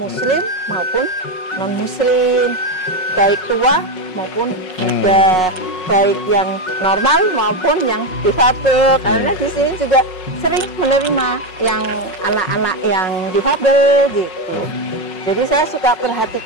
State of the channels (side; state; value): right; late; 5.4 ms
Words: maupun non-muslim, baik tua maupun muda, baik yang normal maupun yang difabel. Karena di sini juga sering menerima yang anak-anak yang difabel gitu. Jadi saya suka